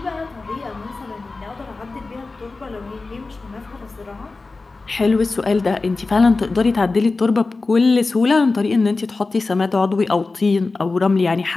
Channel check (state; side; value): quieter; right; 3.7 dB